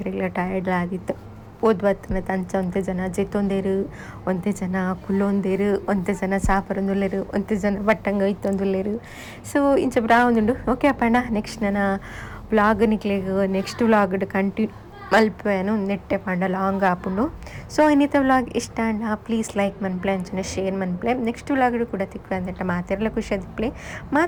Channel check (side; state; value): both; identical; correlation 1.00